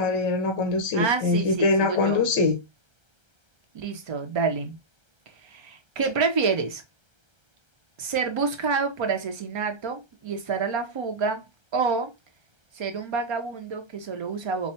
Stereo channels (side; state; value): left; late; 1.3 ms